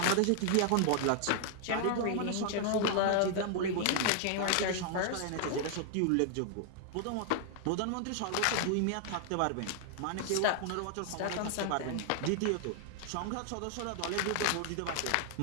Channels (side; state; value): both; different; correlation 0.00